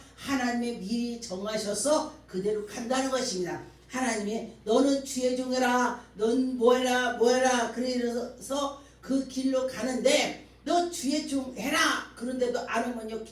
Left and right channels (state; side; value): identical; both; correlation 1.00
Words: 하나님이 미리 정하셔서 그대로 간다는 것입니다. 하나님이 너는 주의 종해라, 넌 뭐해라 뭐해라 그래서 그 길로 가는데 너 주의 종 해라 그런데도 안 하면요